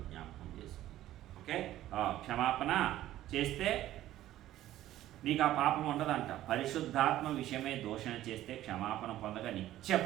జ్ఞాపకం చేసుకో. ఓకే, క్షమాపణ చేస్తే నీకు ఆ పాపం ఉండదంట. పరిశుద్ధాత్మ విషయమే దూషణ చేస్తే క్షమాపణ పొందగా నిత్య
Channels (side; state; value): left; quieter; 13.9 dB